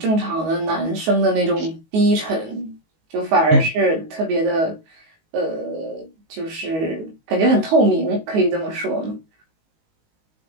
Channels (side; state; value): left; late; 19 ms